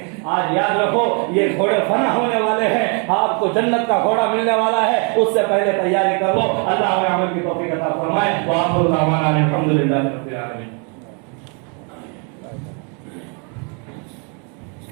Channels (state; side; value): quieter; left; 37.1 dB